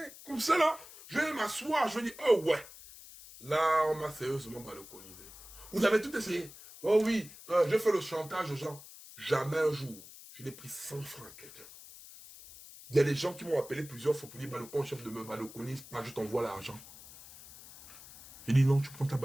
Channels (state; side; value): noise; left; hiss, 17 dB below the sound